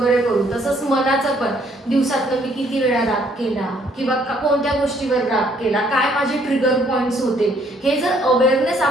करू, तसंच मनाचं पण दिवसातनं मी किती वेळा राग केला किंवा कोणत्या गोष्टीवर राग केला, काय माझे ट्रिगर पॉइंट्स होते, हे जर अवेअरनेस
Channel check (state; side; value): normal; both; correlation 0.65